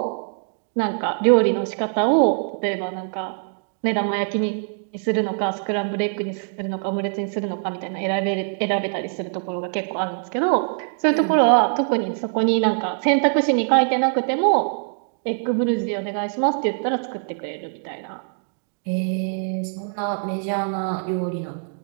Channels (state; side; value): silent; left; digital silence